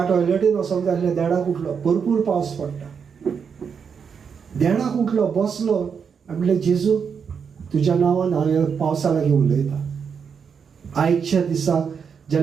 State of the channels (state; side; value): quieter; left; 6.6 dB